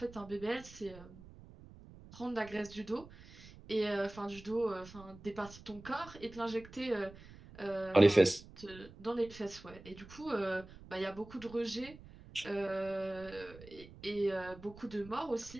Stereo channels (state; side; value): noise; right; rumble, 18 dB below the sound